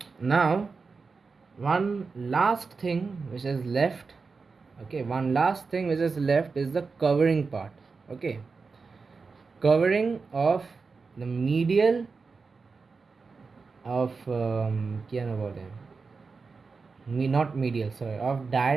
Now, one last thing which is left is the covering part. Okay, covering of the medial of কি যেন বলে not medial, sorry, of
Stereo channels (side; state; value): left; quieter; 4.6 dB